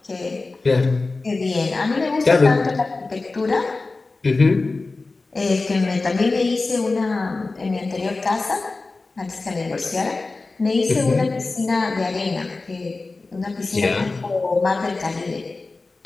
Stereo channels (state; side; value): quieter; right; 3.5 dB